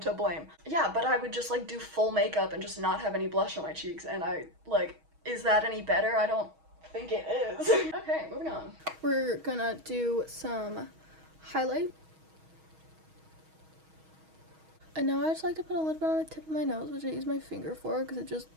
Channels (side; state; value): left; late; 6.3 ms